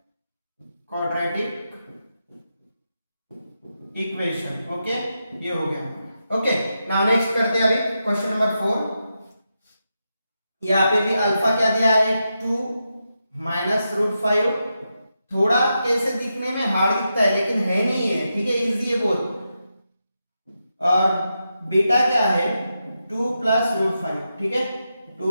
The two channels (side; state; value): both; inverted; correlation -0.87